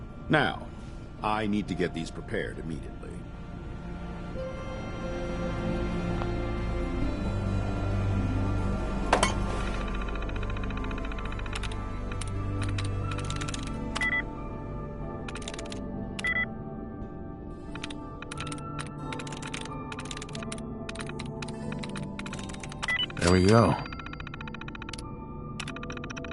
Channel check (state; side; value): identical; both; correlation 1.00